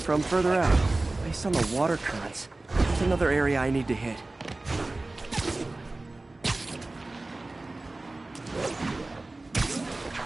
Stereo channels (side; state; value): left; quieter; 3.0 dB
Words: further out. Based on the water currents, there's another area I need to hit.